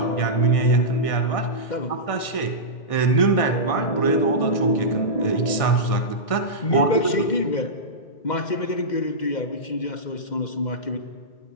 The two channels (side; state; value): right; late; 1.6 ms